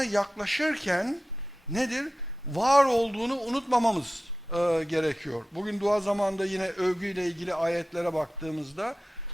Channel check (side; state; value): both; normal; correlation 0.94